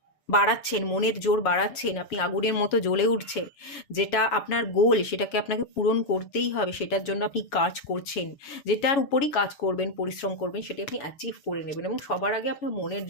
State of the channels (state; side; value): late; right; 7.1 ms